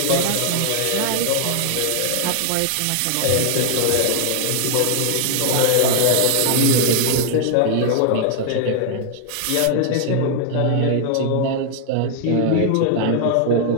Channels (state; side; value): different; both; correlation 0.00